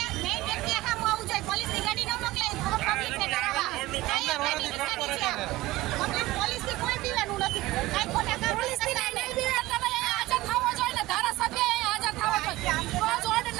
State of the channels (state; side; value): quieter; left; 18.4 dB